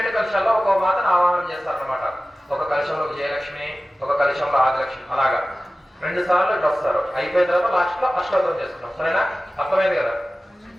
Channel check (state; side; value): normal; both; correlation 0.96